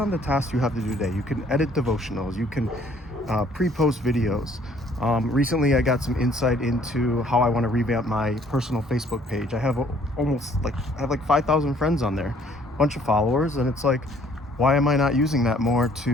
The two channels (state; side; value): normal; both; correlation 0.60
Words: the tasks you have to do today. You can edit devotionals. You can pre-post videos. Recently, I got some insight into how I want to revamp my personal Facebook page. I have like 5,000 friends on there, a bunch of followers, and it's like, why am I not using that more